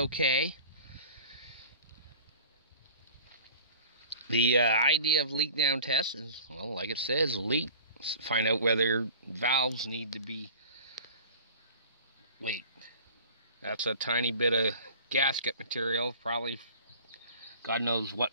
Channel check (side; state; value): both; inverted; correlation -0.43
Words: The idea of leak down test is, well, like it says, leak. Find out whether valves need to be leaked. That's a tiny bit of gasket material, probably God knows